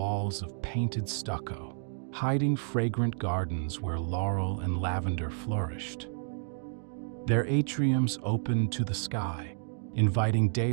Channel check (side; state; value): left; silent; digital silence